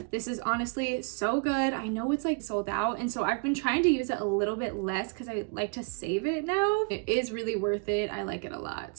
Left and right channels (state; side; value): quieter; left; 35.7 dB